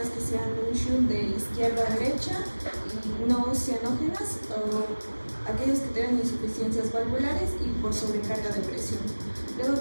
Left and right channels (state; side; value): inverted; both; correlation -1.00